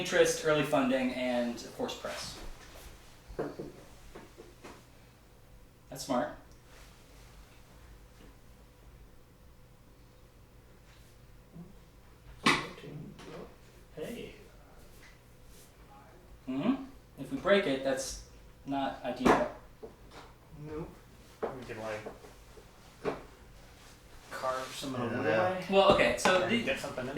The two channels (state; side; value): identical; both; correlation 1.00